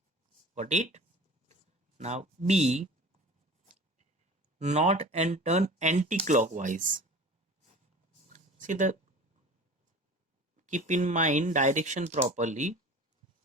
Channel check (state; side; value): normal; both; correlation 0.39